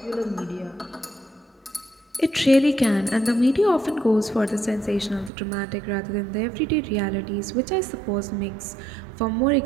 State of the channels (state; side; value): drops out; left; at 5.3 s